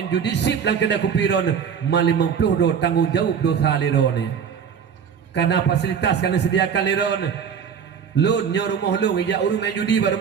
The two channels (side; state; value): left; quieter; 7.3 dB